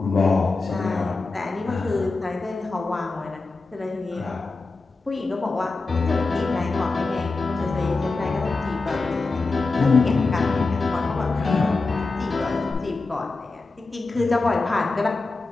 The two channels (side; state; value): right; quieter; 3.7 dB